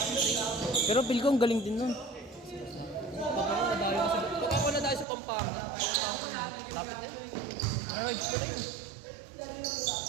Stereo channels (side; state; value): left; drops out; at 5.1 s